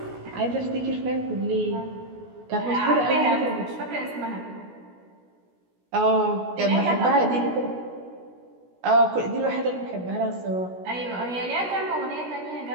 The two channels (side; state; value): left; late; 16 ms